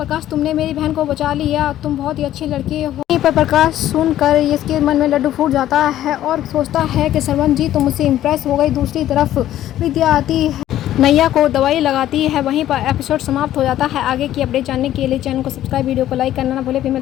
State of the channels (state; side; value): quieter; right; 12.7 dB